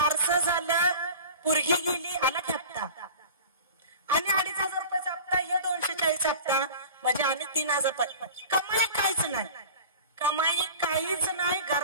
झालं, पोरगी गेली, आला हप्ता आणि 2,500 रुपयाचा हप्ता, हे 240 हप्ता म्हणजे आणि 3,000 रुपये. कमाई काहीच नाही, कमाई काहीच नाही.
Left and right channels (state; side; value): inverted; both; correlation -0.38